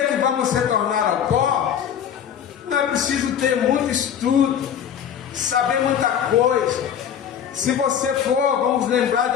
que vamos retornar ao pó, não é preciso ter muito estudo, saber muita coisa. Se você for, vamos lembrar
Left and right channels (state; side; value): quieter; right; 8.8 dB